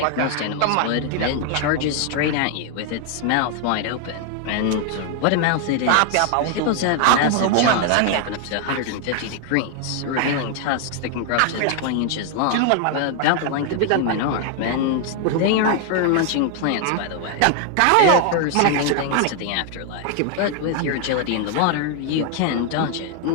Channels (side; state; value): both; different; correlation 0.00